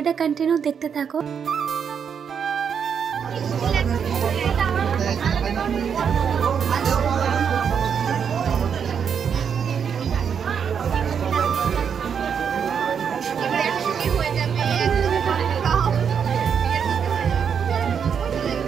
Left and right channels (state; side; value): quieter; left; 7.2 dB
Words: কন্টিনিউ দেখতে থাকো।